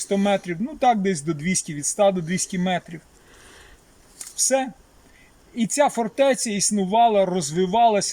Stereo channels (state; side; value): identical; both; correlation 1.00